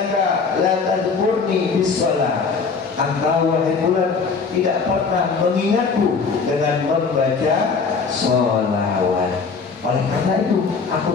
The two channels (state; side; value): quieter; right; 5.0 dB